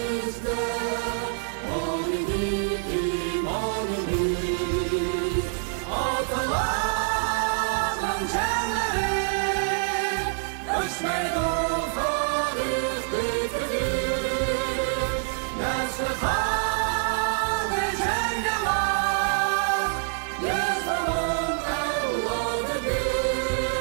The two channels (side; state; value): left; silent; 61 dB below the other